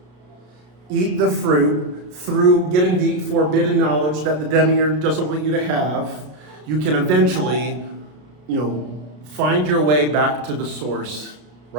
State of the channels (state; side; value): late; left; 33 ms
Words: eat the fruit through getting the forbidden knowledge that the demiurge doesn't want you to have. You can eventually, find your way back to the source,